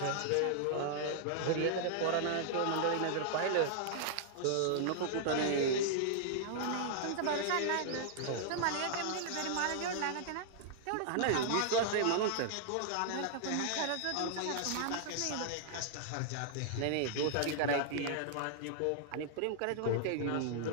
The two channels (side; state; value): both; different; correlation -0.01